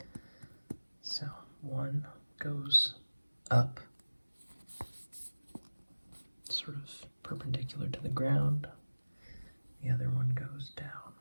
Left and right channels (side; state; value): both; inverted; correlation -1.00